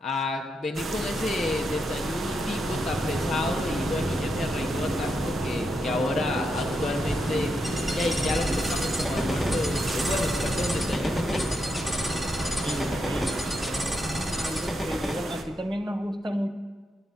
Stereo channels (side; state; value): both; normal; correlation 0.83